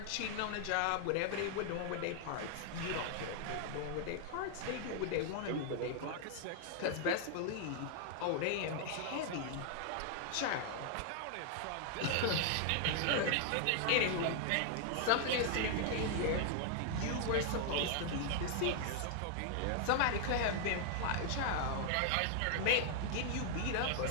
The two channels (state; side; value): different; both; correlation 0.00